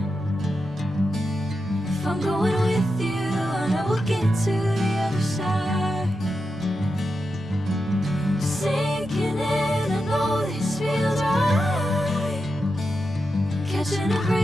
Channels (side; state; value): both; normal; correlation 0.88